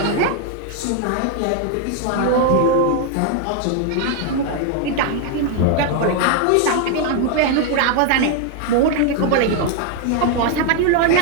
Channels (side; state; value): both; different; correlation 0.00